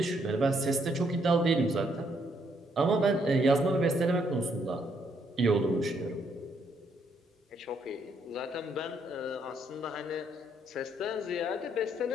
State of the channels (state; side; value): normal; both; correlation 0.72